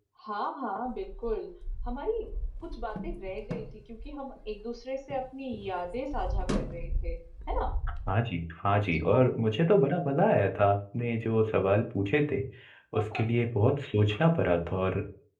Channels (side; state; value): both; identical; correlation 1.00